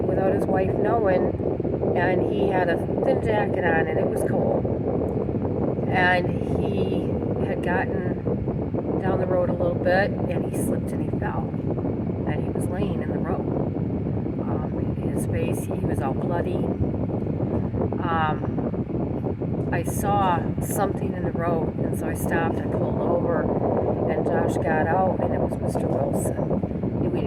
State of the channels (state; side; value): identical; both; correlation 1.00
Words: his wife knowing, and he had a thin jacket on, and it was cold. And he had gotten down the road a little bit, and he slipped and he fell, and he was laying in the road. His face, he was all bloody. I saw something in the road, and so I stopped, I pulled over, and Josh got out, and it was Mr. Wilson. We